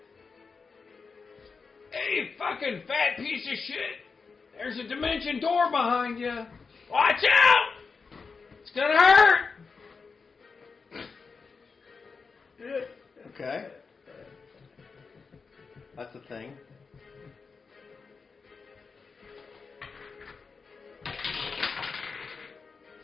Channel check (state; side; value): quieter; right; 4.9 dB